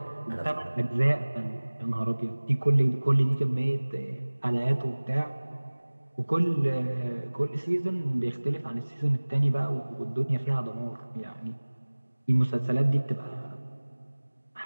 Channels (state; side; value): inverted; both; correlation -1.00